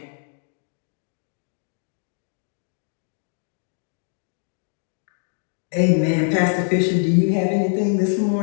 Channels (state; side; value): silent; right; digital silence